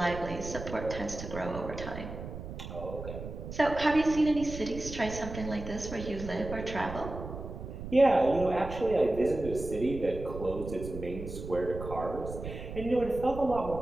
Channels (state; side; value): noise; right; rumble, 9 dB below the sound